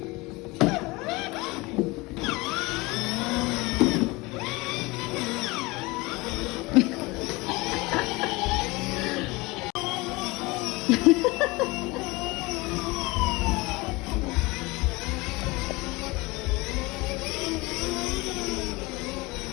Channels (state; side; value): quieter; right; 23.4 dB